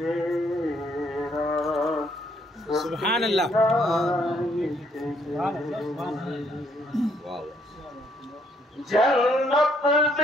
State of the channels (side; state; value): both; normal; correlation 0.69